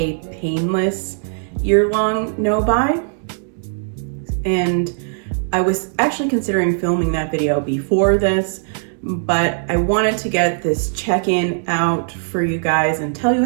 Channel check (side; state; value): left; silent; digital silence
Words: painless year-long no-buy. And I was actually considering filming that video before this, but I wanted to get this check-in out for you guys and tell you